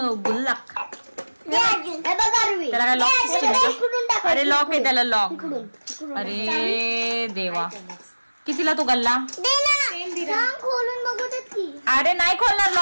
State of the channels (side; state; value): both; inverted; correlation -1.00